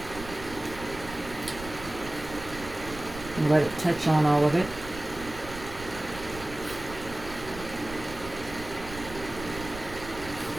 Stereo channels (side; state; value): right; noise; rumble, 13 dB below the sound